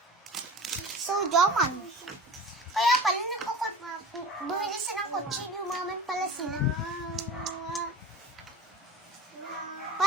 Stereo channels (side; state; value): both; normal; correlation 0.37